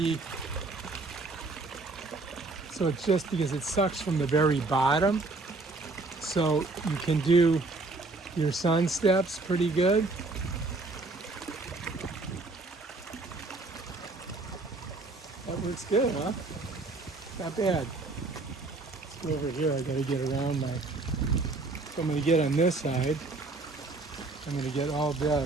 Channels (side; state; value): left; quieter; 3.4 dB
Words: so it's just because it sucks from the very bottom. So you can do your sun steps pretty good. That works good, huh? Not bad. Go over here, I gotta get around my, so I'm gonna get on this side. I'm gonna get all